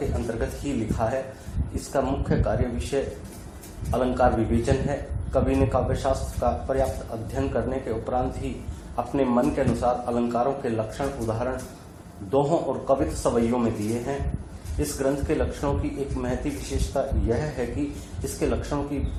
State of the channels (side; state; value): both; identical; correlation 1.00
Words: अंतर्गत ही लिखा है। इसका मुख्य कार्य विषय अलंकार विवेचन है। कवि ने काव्यशास्त्र का पर्याप्त अध्ययन करने के उपरांत ही अपने मन के अनुसार अलंकारों के लक्षण उदाहरण दोहों और कवित्व सवैयों में दिए हैं। इस ग्रंथ के लक्षणों की एक महती विशेषता यह है कि इसके लक्षणों की